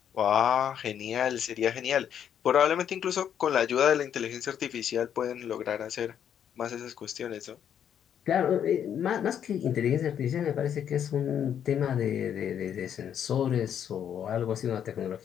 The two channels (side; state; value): right; quieter; 9.1 dB